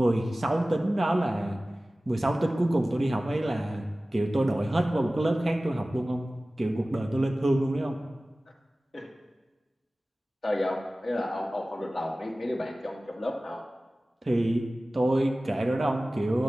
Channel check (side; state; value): both; normal; correlation 0.97